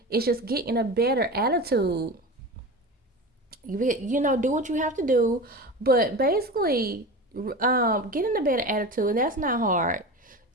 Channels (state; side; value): normal; both; correlation 0.29